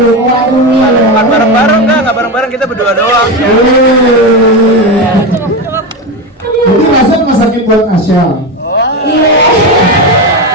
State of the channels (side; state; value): both; normal; correlation 0.17